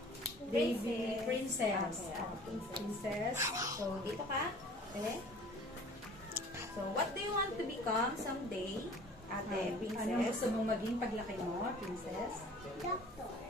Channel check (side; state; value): both; normal; correlation 0.47